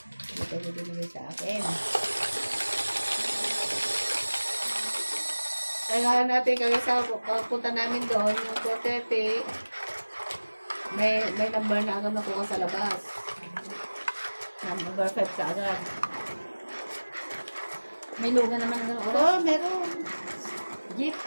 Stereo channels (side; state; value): both; inverted; correlation -1.00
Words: ko binigay sa akin. Kailangan natin kaya sa punta namin doon, yung 4:30, may number na agad nakuha sa labas. Number 5 ka agad. May luga naman ng oras. Oo, meron. Jeep.